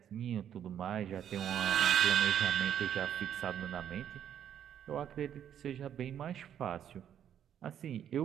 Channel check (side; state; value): left; quieter; 9.6 dB